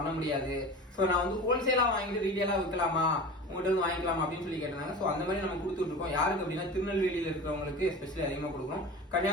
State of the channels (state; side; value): normal; both; correlation 0.34